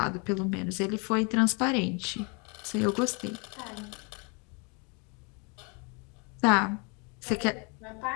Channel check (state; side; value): quieter; right; 32.9 dB